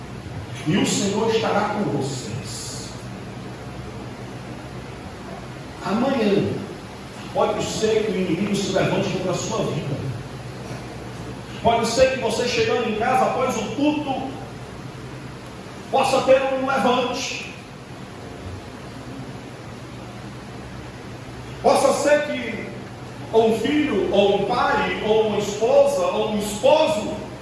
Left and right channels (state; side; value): identical; both; correlation 1.00